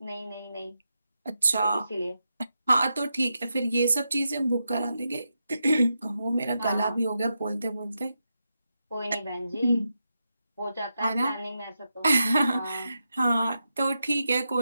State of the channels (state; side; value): inverted; both; correlation -0.87